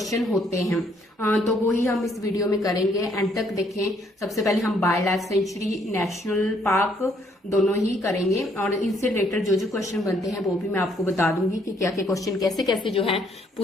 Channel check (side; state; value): both; normal; correlation 0.68